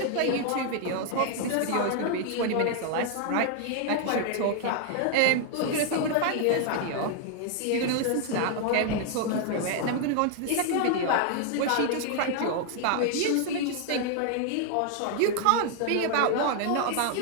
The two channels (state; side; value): different; both; correlation 0.00